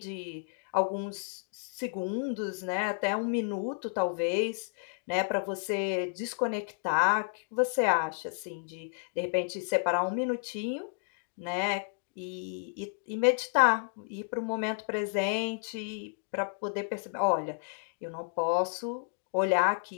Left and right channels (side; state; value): right; silent; digital silence